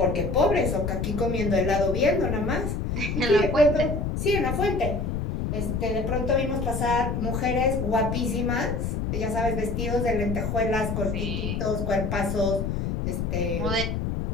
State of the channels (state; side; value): noise; left; rumble, 1 dB below the sound